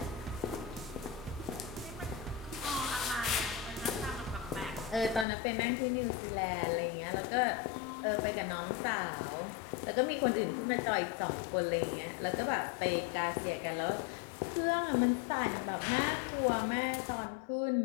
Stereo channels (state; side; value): drops out; right; at 5.2 s